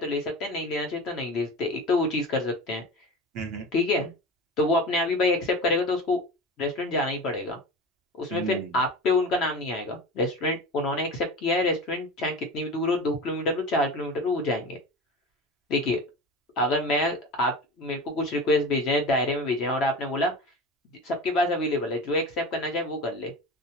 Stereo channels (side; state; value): both; normal; correlation 0.31